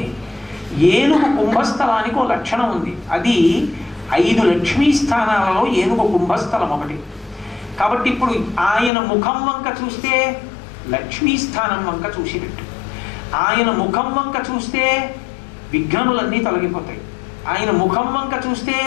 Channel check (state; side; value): drops out; right; at 8.9 s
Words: ఏనుగు కుంభస్థలానికి ఓ లక్షణం ఉంది. అది 5 లక్ష్మీ స్థానాలలో ఏనుగు కుంభస్థలం ఒకటి. కాబట్టి ఇప్పుడు ఆయన ముఖం వంక చూస్తే లక్ష్మీ స్థానం వంక చూసినట్టు, ఆయన ముఖం వంక చూస్తే విఘ్నములన్నీ తొలగిపోతాయి, ఆయన ముఖం వంక చూస్తే